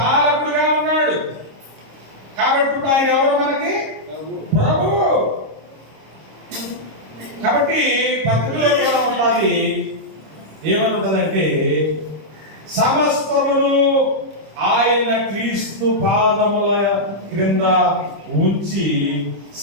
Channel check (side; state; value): left; late; 26 ms